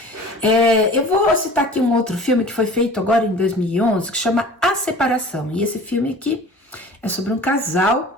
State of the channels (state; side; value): normal; both; correlation 0.43